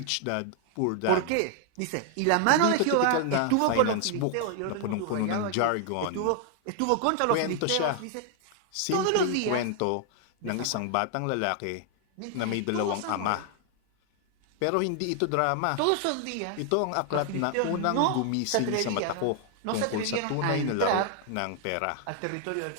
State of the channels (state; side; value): different; both; correlation 0.00